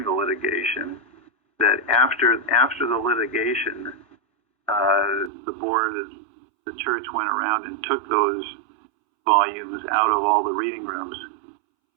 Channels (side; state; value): left; drops out; at 5.3 s